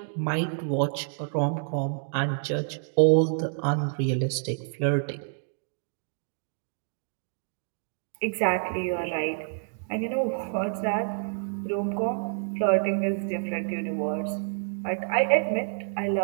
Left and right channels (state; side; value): silent; left; digital silence